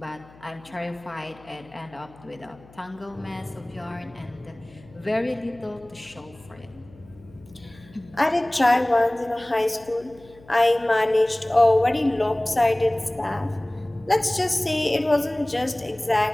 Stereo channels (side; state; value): left; noise; hum, 24 dB below the sound